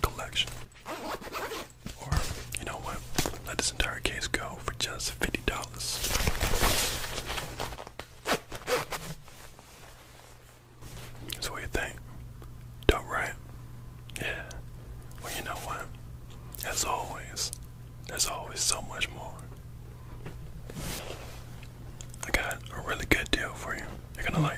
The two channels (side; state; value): both; identical; correlation 1.00